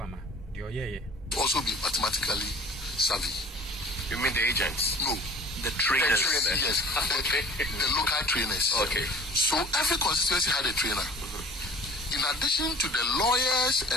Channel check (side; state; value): both; normal; correlation 0.48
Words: the also be mathematically savvy. You mean the agents? No. The trainers. Yes. The local trainers. Okay. So every constituency had a trainer. In addition to the lawyers